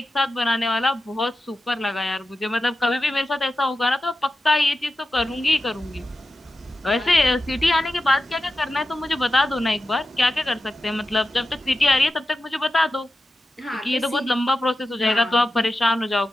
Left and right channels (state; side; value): normal; both; correlation 0.92